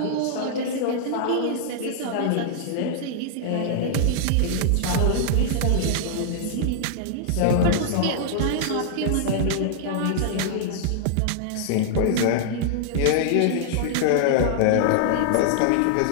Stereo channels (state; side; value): different; both; correlation -0.01